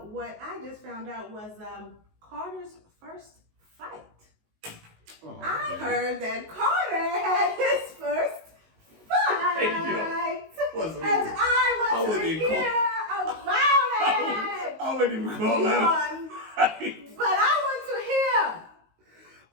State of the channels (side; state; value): left; late; 19 ms